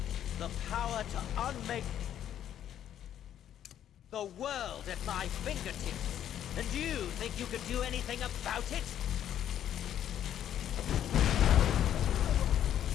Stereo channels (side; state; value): right; quieter; 10.5 dB